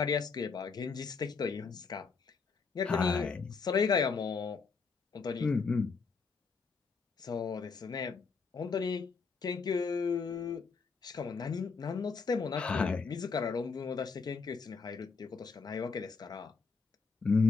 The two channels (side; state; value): right; quieter; 5.0 dB